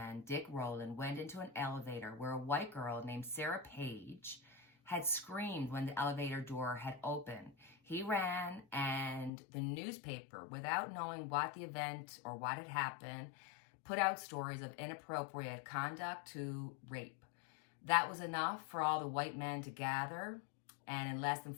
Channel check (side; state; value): right; drops out; at 9.3 s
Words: Dick Rowland, went into an elevator where a white girl named Sarah Page had screamed when the elevator door had opened. He ran, and the newspaper, without knowing what the event or what had happened, put out stories of inappropriate conduct to rape. That was enough for all the white men to gather, and in less than